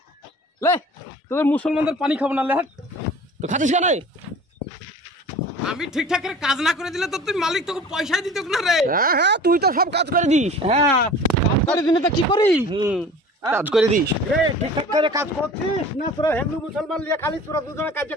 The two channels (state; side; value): normal; both; correlation 0.42